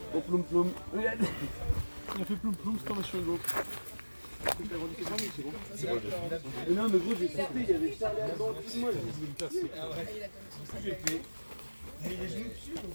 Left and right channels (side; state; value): both; inverted; correlation -1.00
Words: au ploum ploum. Regarde. Il a fait ploum ploum, c'est comme sur Hugo. C'est bon. Mais non, mais gros, j'ai sauté, il y avait Charlie Alban, tout moi. J'ai fait. Mais les genoux dessus.